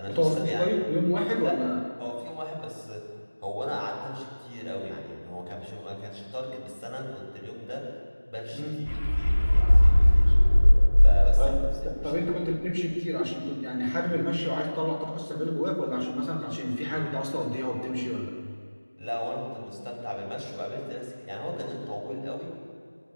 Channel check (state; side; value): inverted; both; correlation -1.00